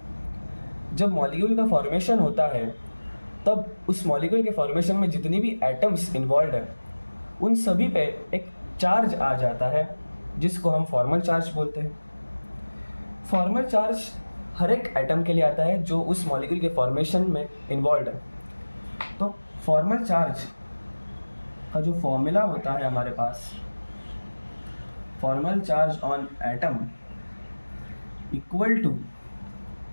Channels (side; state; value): both; inverted; correlation -1.00